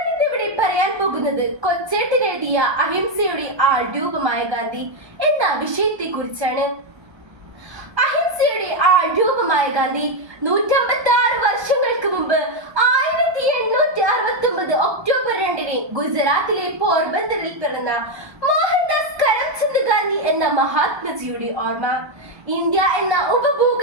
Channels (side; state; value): left; late; 1.3 ms